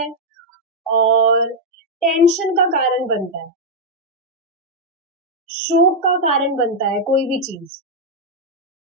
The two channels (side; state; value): both; normal; correlation -0.02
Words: और टेंशन का कारण बनता है, शोक का कारण बनता है कोई भी चीज,